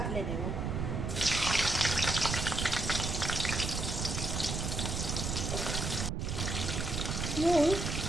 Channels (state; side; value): noise; right; rumble, 2 dB below the sound